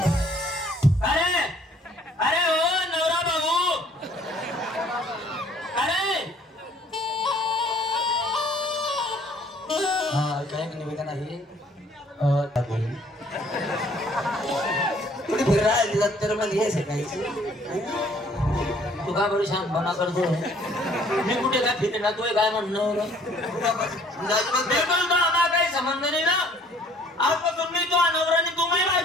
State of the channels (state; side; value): normal; both; correlation 0.58